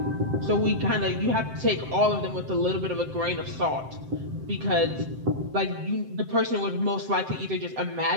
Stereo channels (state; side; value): late; left; 7.7 ms